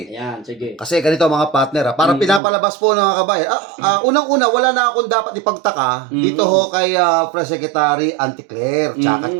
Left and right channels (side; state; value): left; drops out; at 2.4 s